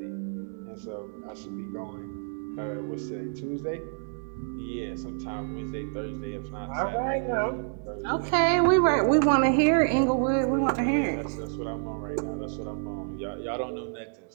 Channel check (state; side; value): silent; left; digital silence